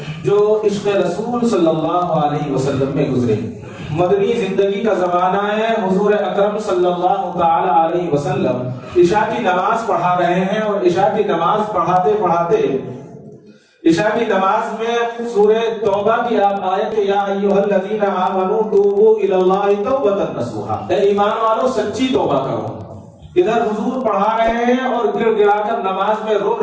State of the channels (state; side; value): identical; both; correlation 1.00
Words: جو عشق رسول صلی اللہ علیہ وسلم میں گزرے. مدنی زندگی کا زمانہ ہے، حضور اکرم صلی اللہ تعالی علیہ وسلم عشاء کی نماز پڑھا رہے ہیں اور عشاء کی نماز پڑھاتے پڑھاتے عشاء کی نماز میں سورہ توبہ کی آپ آیت یا ایھا الذین آمنوا توبوا الی اللہ توبۃ نصوحا، اے ایمان والو سچی توبہ کرو. ادھر حضور پڑھا رہے ہیں اور گڑ گڑا کر نماز میں رو